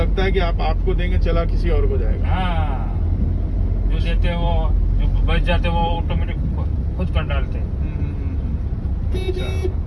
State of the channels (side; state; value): both; identical; correlation 1.00